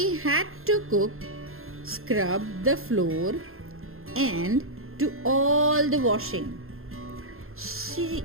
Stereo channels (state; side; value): late; left; 0.61 ms